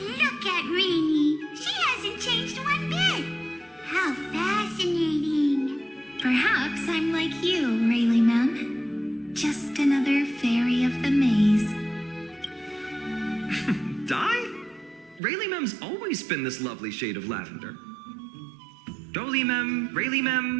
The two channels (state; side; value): drops out; left; at 15.2 s